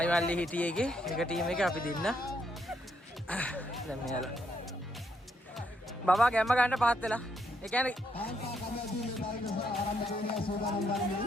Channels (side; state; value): both; normal; correlation 0.76